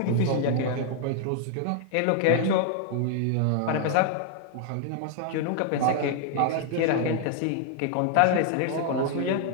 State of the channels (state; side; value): different; both; correlation 0.00